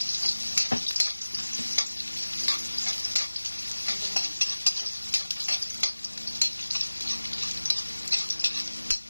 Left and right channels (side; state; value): both; inverted; correlation -1.00